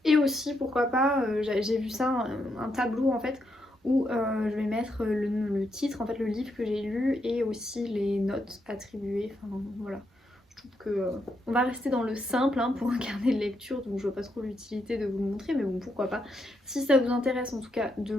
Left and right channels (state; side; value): normal; both; correlation 0.79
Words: Et aussi pourquoi pas, j'ai vu ça, un tableau en fait où je vais mettre le titre, en fait le livre que j'ai lu et aussi les notes attribuées, enfin voilà. Je trouve que on va rester dans le simple hein, pour un carnet de lecture, donc je vois pas trop l'utilité de vous le montrer, mais bon pourquoi pas. Si ça vous intéresse en tout cas de